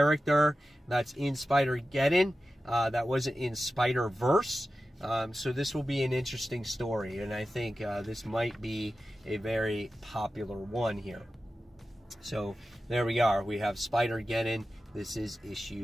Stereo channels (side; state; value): both; normal; correlation 0.93